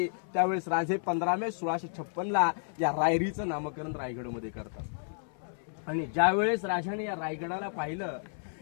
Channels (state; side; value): silent; right; 57 dB below the other